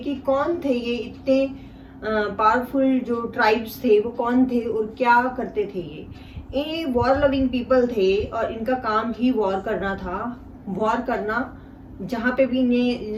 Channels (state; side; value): identical; both; correlation 1.00